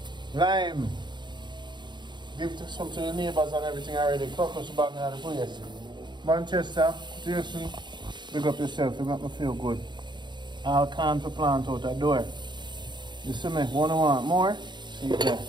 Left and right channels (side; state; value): left; late; 0.22 ms